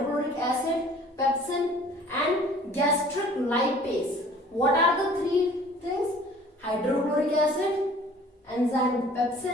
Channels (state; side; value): normal; both; correlation 0.51